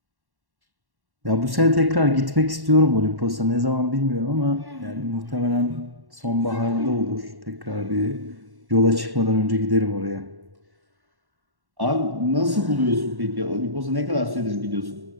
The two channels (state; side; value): late; left; 1.1 ms